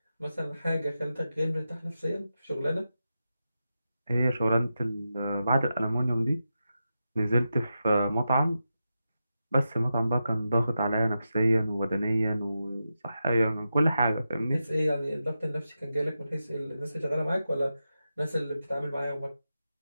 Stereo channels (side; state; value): both; inverted; correlation -0.90